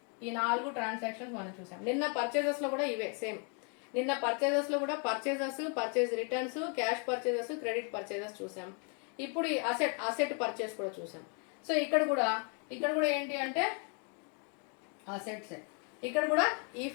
ఈ 4 ట్రాన్సాక్షన్స్ మనం చూసాం. నిన్న పర్చేజెస్లో కూడా ఇవే సేమ్. నిన్న పర్చేజెస్లో కూడా purchase returns, cash purchases, credit purchases చూసాం. ఇప్పుడు ఈ అసెట్ పర్చేస్ కూడా చూసాం. సో ఇక్కడ కూడా ఏంటి అంటే అసెట్స్. ఇక్కడ కూడా ఈ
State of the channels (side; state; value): right; quieter; 39.0 dB